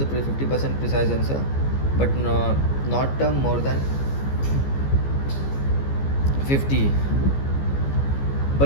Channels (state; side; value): late; right; 15 ms